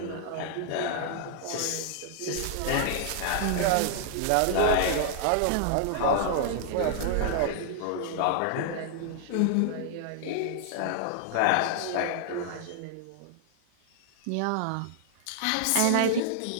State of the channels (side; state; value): both; different; correlation -0.01